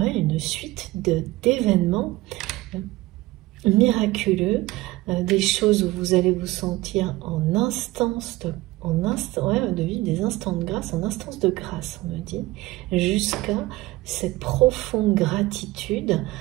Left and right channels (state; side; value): quieter; left; 19.1 dB